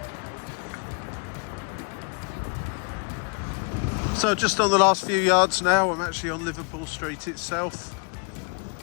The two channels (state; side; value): quieter; right; 37.2 dB